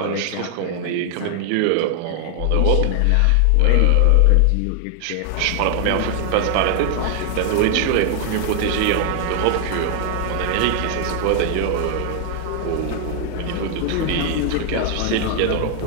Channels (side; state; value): both; different; correlation 0.00